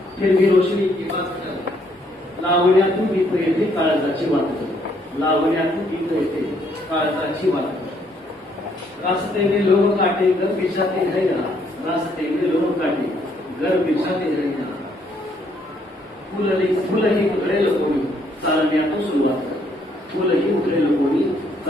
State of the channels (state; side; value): normal; both; correlation 0.69